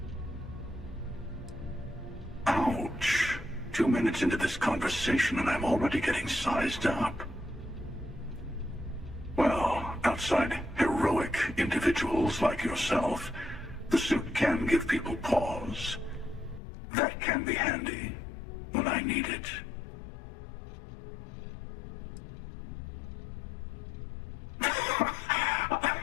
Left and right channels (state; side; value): drops out; right; at 16.6 s